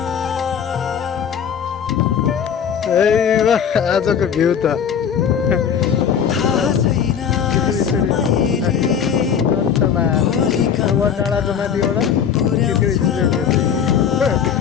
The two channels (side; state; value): right; quieter; 7.8 dB